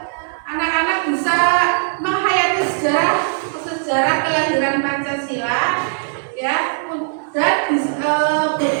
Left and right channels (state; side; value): silent; left; 62 dB below the other